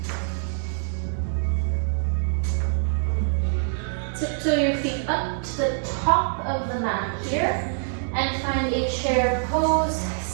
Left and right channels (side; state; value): left; silent; digital silence